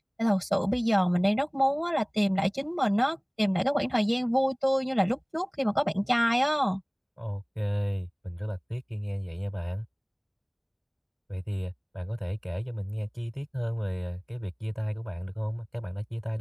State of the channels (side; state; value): both; identical; correlation 1.00